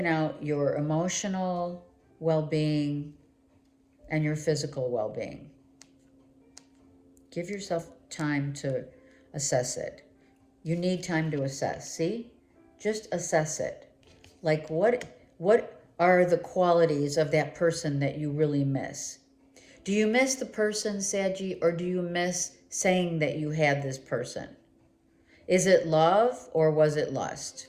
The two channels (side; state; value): both; identical; correlation 1.00